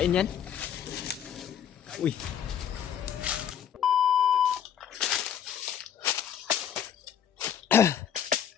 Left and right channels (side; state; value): right; quieter; 9.0 dB